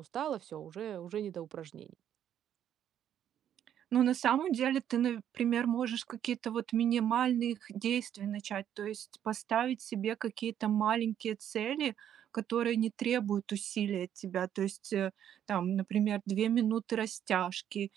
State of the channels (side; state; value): left; quieter; 10.0 dB